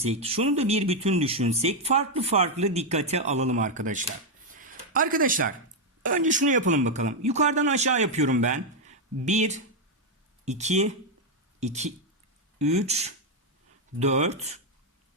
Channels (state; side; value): normal; both; correlation 0.02